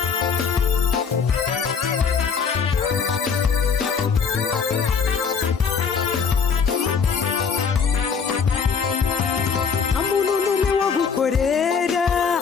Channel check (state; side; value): quieter; right; 6.1 dB